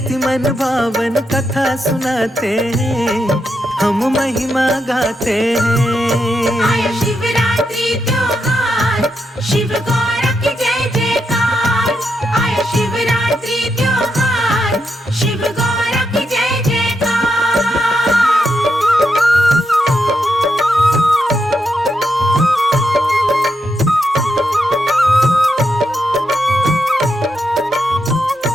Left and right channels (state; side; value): normal; both; correlation 0.83